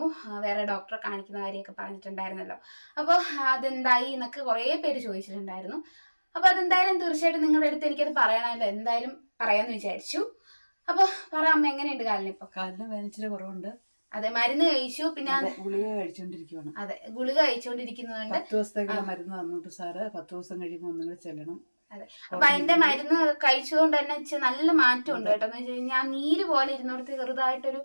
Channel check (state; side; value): inverted; both; correlation -1.00